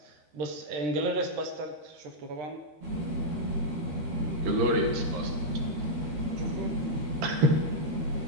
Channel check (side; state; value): left; late; 13 ms